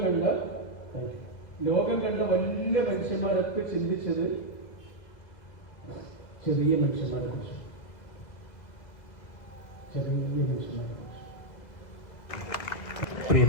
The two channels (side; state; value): right; late; 2.0 ms